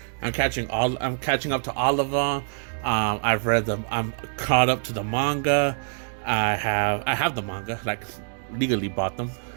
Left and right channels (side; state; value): left; silent; digital silence